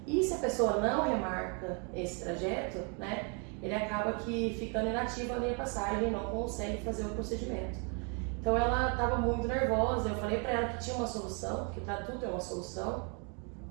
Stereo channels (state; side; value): quieter; left; 36.5 dB